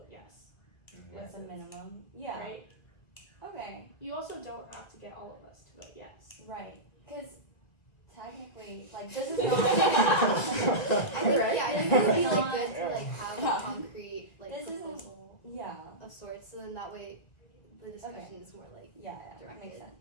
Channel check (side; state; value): right; late; 1.9 ms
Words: yes, What's the minimum? Yeah. right? Okay. You also don't have to get all of us to vote yes. Right. Because technically, like, this is not. I think, Right. yeah, I think it would be like Not- good to like have Yeah. a concrete like This isn't- proposal Yeah. of sorts, so then that way the discussion is more like Yeah, that Directed. makes sense.